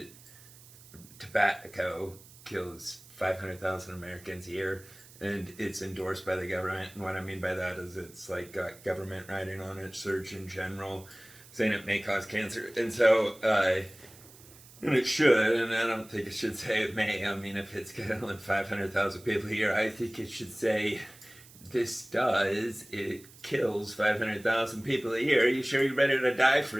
tobacco kills 500,000 Americans a year, and it's endorsed by the government. And what I mean by that is it's like got government writing on it, Surgeon General, saying it may cause cancer. And so, and it should, and I don't think it should say it may. I mean, if it's killing 500,000 people a year, I think it should say it kills 500,000 people a year. Are you sure you're ready to die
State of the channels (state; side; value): noise; right; hiss, 22 dB below the sound